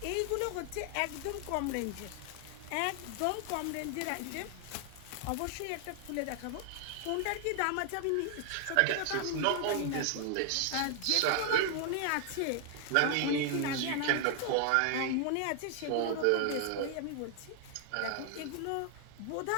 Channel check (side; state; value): both; different; correlation 0.00